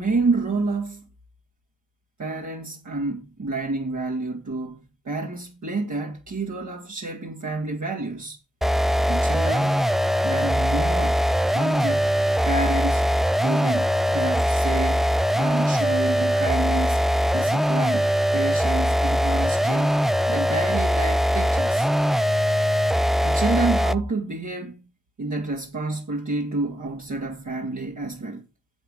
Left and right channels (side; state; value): both; normal; correlation 0.86